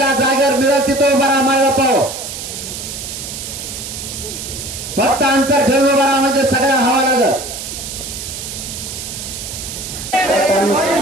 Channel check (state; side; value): noise; right; hiss, 8 dB below the sound